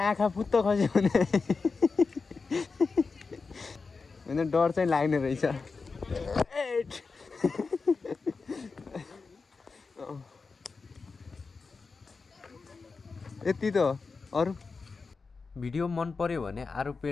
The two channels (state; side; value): quieter; right; 4.5 dB